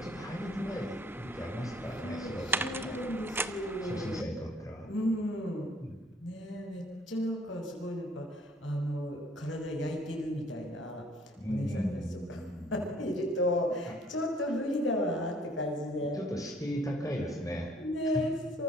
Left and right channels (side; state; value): both; normal; correlation 0.59